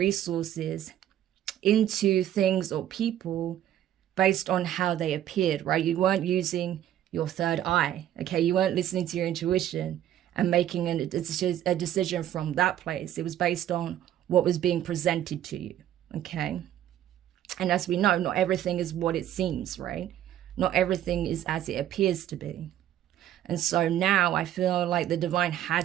into things or people based on how they appeared, right? You weren't using your third eye, okay? You weren't listening to your intuition and making a decision from that place. It was based on what was being presented to you, okay? And as we know, not everything is what it seems, right? Not everything is as it appears to be. And so now I feel like the divine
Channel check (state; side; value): quieter; left; 11.7 dB